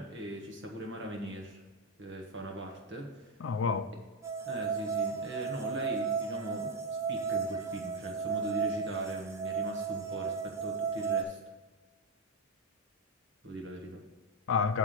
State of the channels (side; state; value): both; normal; correlation 0.04